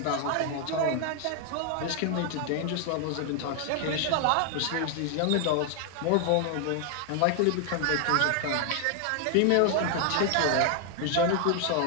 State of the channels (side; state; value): both; different; correlation 0.00